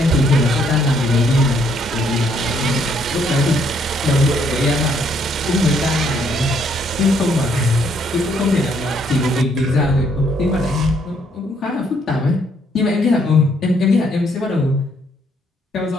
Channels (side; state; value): both; normal; correlation 0.69